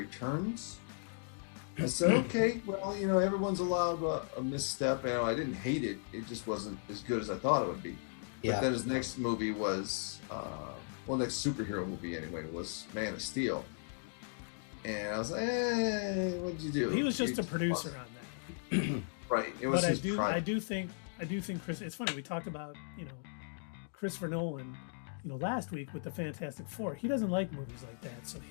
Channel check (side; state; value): right; silent; digital silence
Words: I said, okay, well, everyone's allowed a misstep. I didn't hate it. It just wasn't as good as I thought it would be. Yeah. But then his next movie was, next superhero movie anyway, was Man of Steel. And I was like, what'd you do? He was just a producer on that. Right. It was but his I do think Chris, it's funny, we talked about, Christopher Nolan, last week with the Fantastic Four. He doesn't like movies like that. So